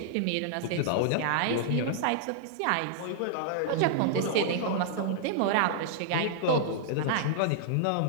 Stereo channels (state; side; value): different; both; correlation -0.01